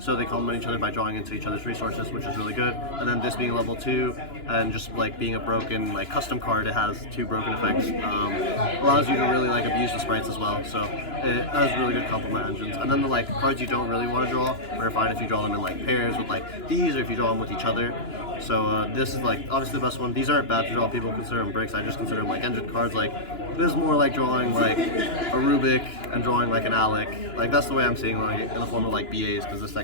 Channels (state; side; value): late; right; 2.9 ms